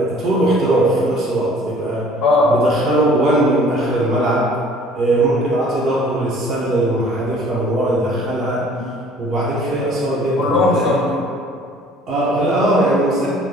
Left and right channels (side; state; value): both; normal; correlation 0.53